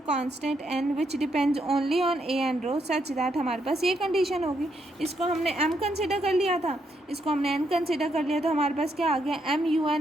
n which depends only on a and rho such that हमारे पास ये condition होगी. इसको हमने m consider कर लिया था, इसको हमने n कंसिडर कर लिया, तो हमारे पास क्या आ गया, m u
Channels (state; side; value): normal; both; correlation 0.77